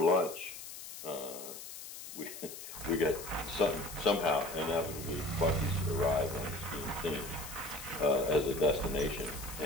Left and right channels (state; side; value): noise; left; hiss, 11 dB below the sound